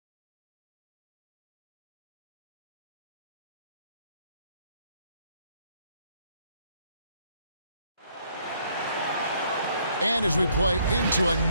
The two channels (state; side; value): inverted; both; correlation -0.68